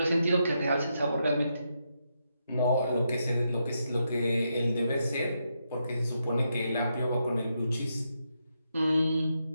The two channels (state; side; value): inverted; both; correlation -0.82